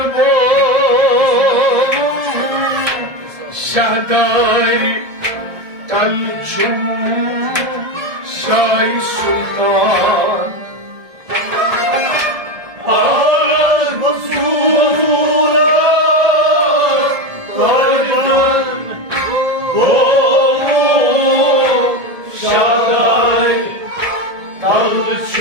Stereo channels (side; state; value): left; late; 1.7 ms